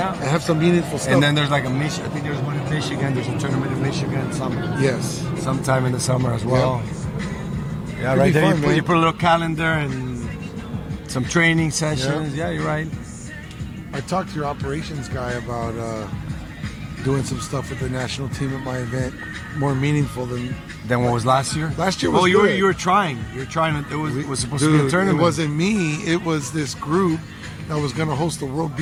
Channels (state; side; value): identical; both; correlation 1.00